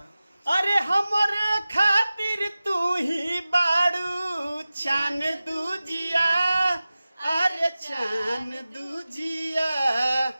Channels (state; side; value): inverted; both; correlation -0.96